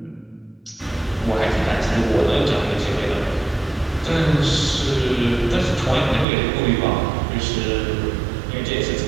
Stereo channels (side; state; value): left; drops out; at 6.2 s